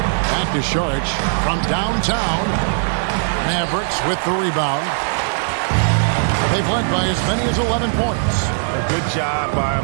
to Saric from downtown. Mavericks with the rebound. They've led by as many as 11 points. A good job by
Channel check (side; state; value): left; silent; digital silence